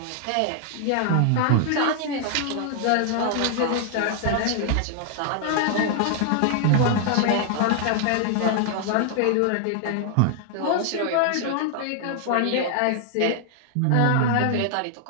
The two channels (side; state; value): both; different; correlation 0.00